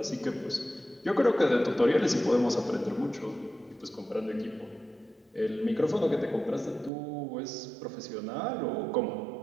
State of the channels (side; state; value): left; drops out; at 6.9 s